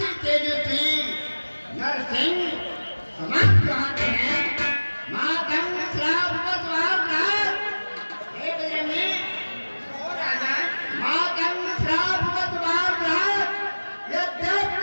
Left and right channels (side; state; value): both; inverted; correlation -1.00